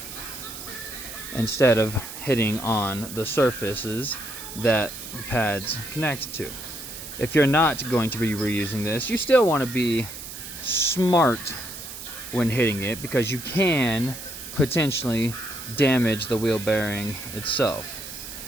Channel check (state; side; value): noise; right; hiss, 11 dB below the sound